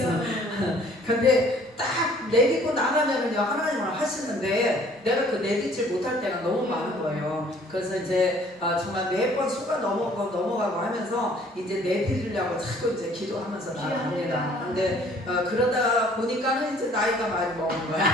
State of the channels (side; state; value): both; normal; correlation 0.56